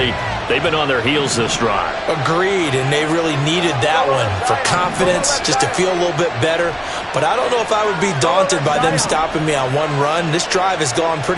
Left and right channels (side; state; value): both; identical; correlation 1.00